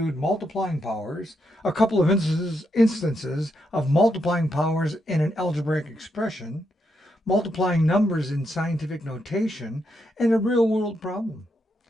multiplying powers, a couple of instances of multiplying powers in an algebraic expression, multiplying numbers in scientific notation, and a real-world problem.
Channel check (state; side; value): normal; both; correlation 0.81